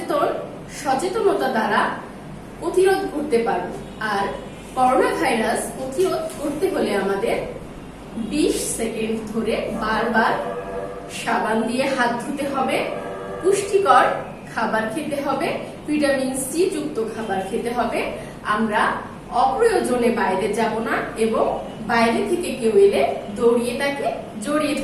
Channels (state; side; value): identical; both; correlation 1.00